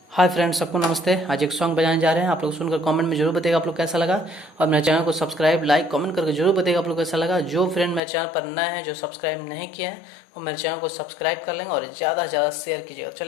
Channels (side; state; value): right; drops out; at 8.0 s